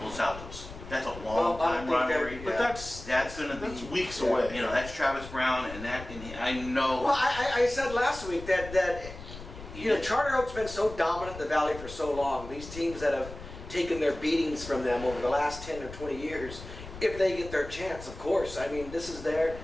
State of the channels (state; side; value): noise; left; rumble, 13 dB below the sound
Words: Los Altos. That's a long Well, I time don't think they're- rivalry. But that's gonna be that's weeks yeah, away. That's Travis Brown, and I know. Well, I said last week that Charter Oak's been so dominant in the Valley for so long. These teams that have taken their beatings from them over the last 10 or 20 years, if they get their chance, of course. I mean, this is their